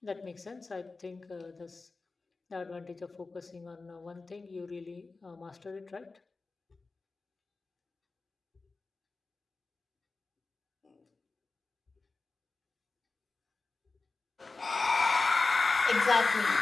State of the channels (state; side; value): quieter; right; 3.9 dB